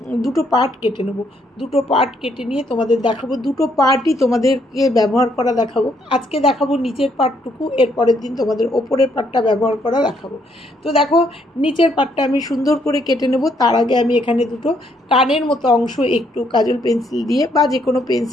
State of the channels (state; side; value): normal; both; correlation 0.71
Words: দুটো পার্ট কেটে নেব। দুটো পার্ট কেটে নিয়ে তোমাদের দেখাবো। দুটো পার্টই তোমাদেরকে ব্যবহার করা দেখাবো। আজকে দেখাবো নিচের পার্টটুকু, এর পরের দিন তোমাদের ওপরের পার্টটা ব্যবহার করা দেখাবো। তো দেখো, নিচের পার্টটা আমি সুন্দর করে কেটে নেব। তার আগে আমি এখানে দুটো কানের মতো অংশ একটু কাজল পেন্সিল দিয়ে বা যে কোনো